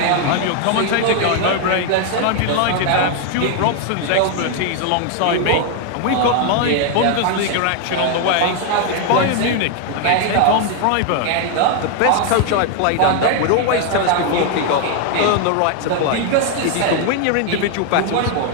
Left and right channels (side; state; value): both; different; correlation 0.00